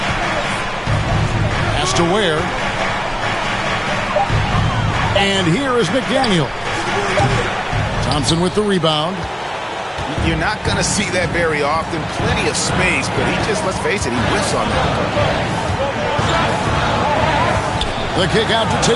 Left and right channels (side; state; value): both; identical; correlation 1.00